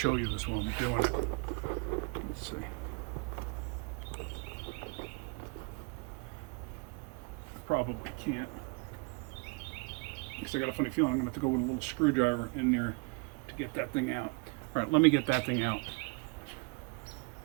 you this while I'm doing it. Let's see. Probably can't. Because I got a funny feeling I'm going to have to go with a little screwdriver in there to get that thing out. All right, let me get that thing out.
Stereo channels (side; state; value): left; quieter; 32.2 dB